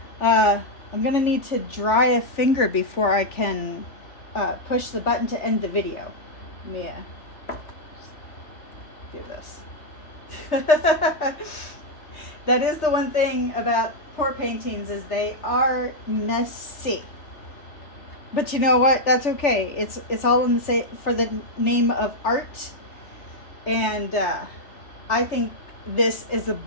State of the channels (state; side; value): late; right; 3.4 ms